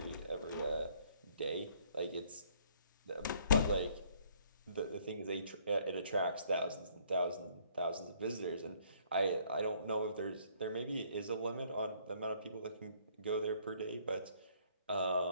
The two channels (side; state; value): both; inverted; correlation -0.63